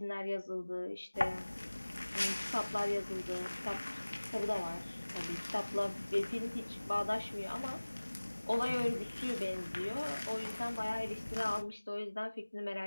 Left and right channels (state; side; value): inverted; both; correlation -1.00